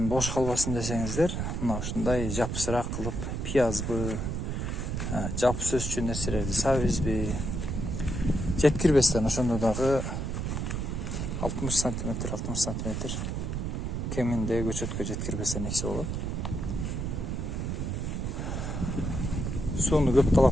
бош калбасын десеңиздер, мына ушундай жапсыраак кылып пиязбы, жапыс өсчү нерселерди сабизби жеткирбестен ошондо дагы 60 сантиметр кеминде көчөткө жеткирбестен эксе болот. Сууну көп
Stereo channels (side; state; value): right; noise; rumble, 2 dB below the sound